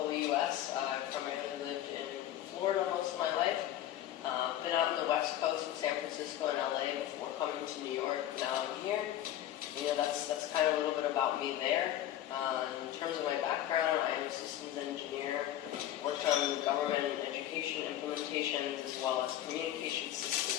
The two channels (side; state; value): right; quieter; 12.4 dB